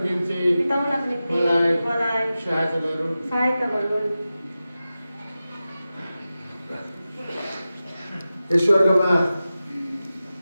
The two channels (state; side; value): inverted; both; correlation -0.94